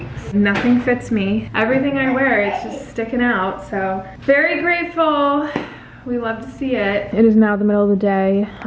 Nothing fits me. Everything I wear is just sticking out, so very grateful. We love to see it. It is now the middle of the day.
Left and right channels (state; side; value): identical; both; correlation 1.00